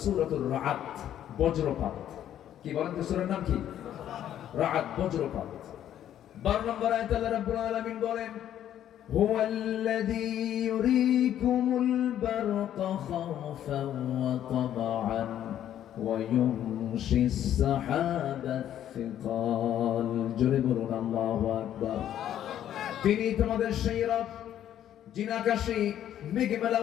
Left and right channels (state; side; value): quieter; right; 11.0 dB